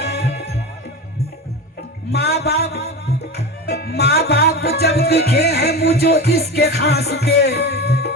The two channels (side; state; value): both; normal; correlation 0.25